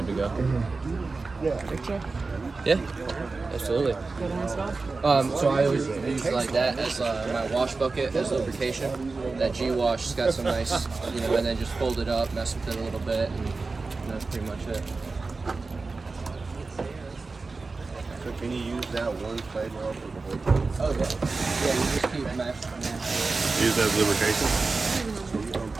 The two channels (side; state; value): left; quieter; 3.9 dB